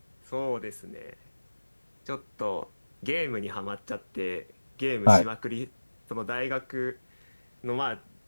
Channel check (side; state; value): both; inverted; correlation -1.00